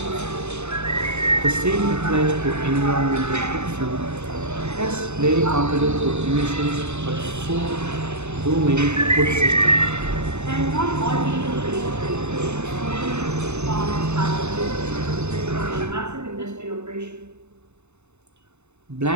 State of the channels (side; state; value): left; late; 0.82 ms